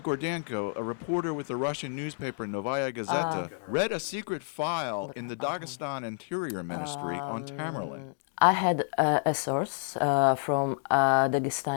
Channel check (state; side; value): silent; right; digital silence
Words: Gordenko, a reporter with the Russian newspaper Novaya Gazeta, read a secret file in the Dagestan Interior Ministry on Tamerlan. I had a source from